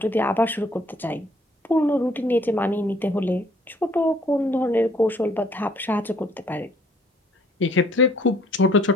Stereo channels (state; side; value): normal; both; correlation 0.61